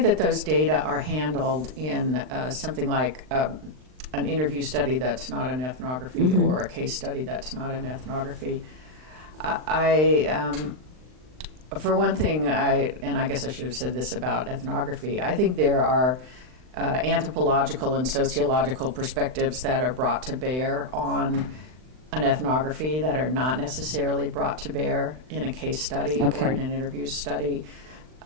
those data are handled in something like an interview study that's not an ethnography or a case study that's not an ethnography, for one thing, and I guess I should have said this about ethnography, I think there are anthropological and sociological perspectives that are brought to bear on an ethnography that are not necessarily brought to bear in a case study or in an interview study.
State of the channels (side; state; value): left; late; 39 ms